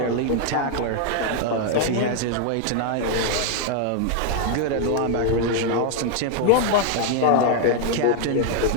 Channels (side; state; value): both; different; correlation 0.00